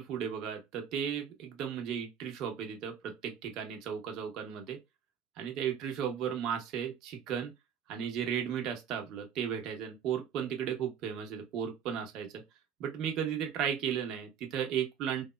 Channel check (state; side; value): quieter; left; 8.2 dB